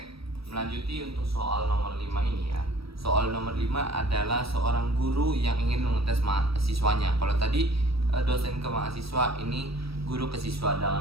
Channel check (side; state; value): left; late; 0.76 ms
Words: melanjuti untuk soal nomor 5 ini ya. Soal nomor 5 adalah seorang guru yang ingin mengetes mahasiswanya. Kalau tadi dosen ke mahasiswa, ini guru ke siswa.